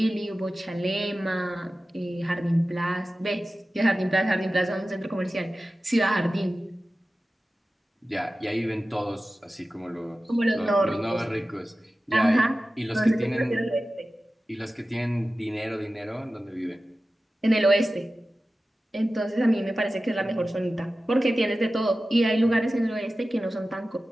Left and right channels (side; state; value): both; normal; correlation 0.95